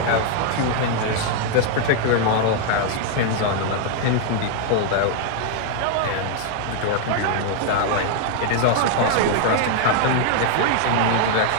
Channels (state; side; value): different; both; correlation 0.00